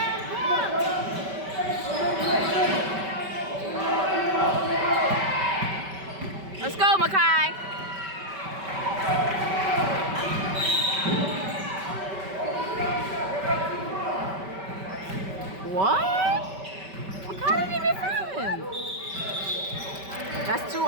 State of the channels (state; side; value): late; left; 5.2 ms